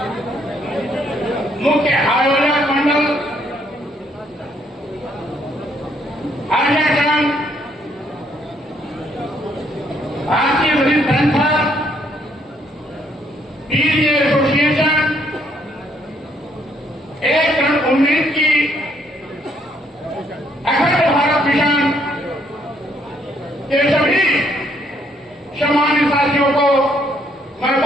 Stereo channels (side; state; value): both; normal; correlation 0.69